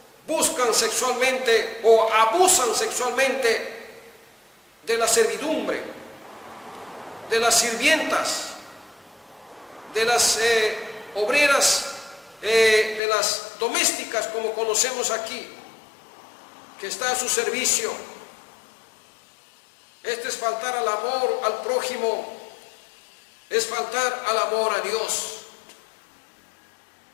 buscan sexualmente o abusan sexualmente de la servidumbre, de las sirvientas, de las obreras, de las domésticas, como conocemos aquí, que está a su servicio. Este es faltar al amor al prójimo, es faltar al amor a Dios.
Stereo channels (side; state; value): right; drops out; at 13.0 s